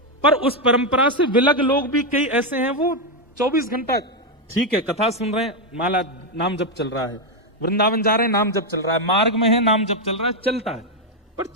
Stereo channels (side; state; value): both; normal; correlation 0.04